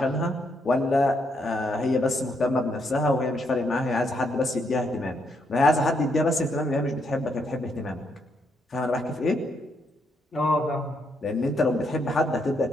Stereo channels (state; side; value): normal; both; correlation 0.76